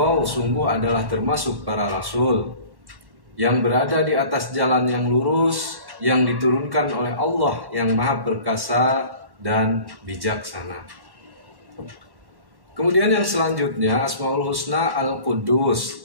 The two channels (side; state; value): left; late; 1.1 ms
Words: sungguh adalah termasuk para rasul yang berada di atas jalan yang lurus, yang diturunkan oleh Allah yang maha perkasa dan bijaksana. Kemudian yang selanjutnya, Asmaul Husna